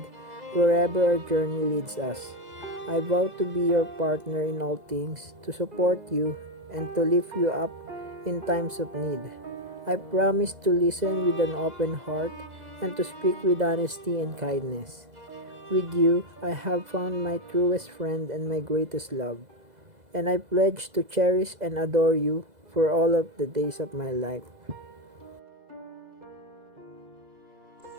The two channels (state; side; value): late; left; 2.0 ms